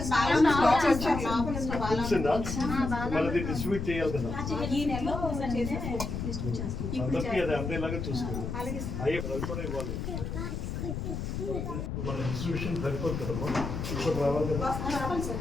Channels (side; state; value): left; noise; rumble, 4 dB below the sound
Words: మళ్ళీ డిస్ట్రిబ్యూట్ చేయాలి కదా, అందరికీ అది అందేలాగా చూసుకోవాలి. అయ్యే కూడా ఇవ్వాలి. మన డిస్ట్రిబ్యూషన్ సరిపోదు కదమ్మా, ఇప్పుడు రావాలి కదా,